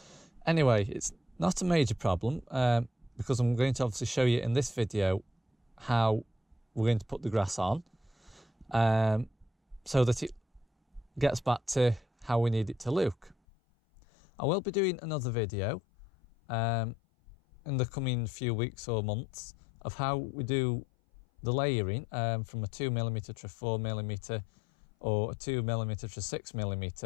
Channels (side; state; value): right; drops out; at 13.4 s